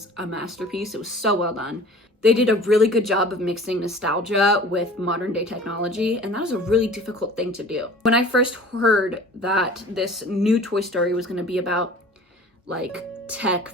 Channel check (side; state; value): both; normal; correlation 0.44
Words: a masterpiece. It was so well done. They did a really good job of mixing nostalgia with modern day technology, and that was a really difficult thing to do. When I first heard that this new Toy Story was going to be about like tech